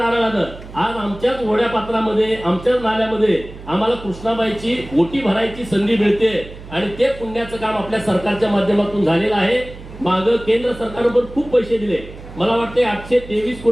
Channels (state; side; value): noise; right; hum, 15 dB below the sound